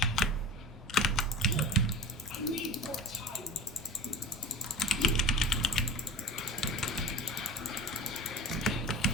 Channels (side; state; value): both; normal; correlation 0.35